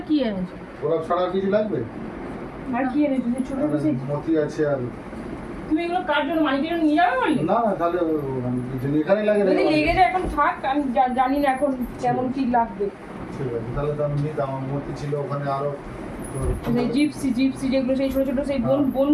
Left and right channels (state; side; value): identical; both; correlation 1.00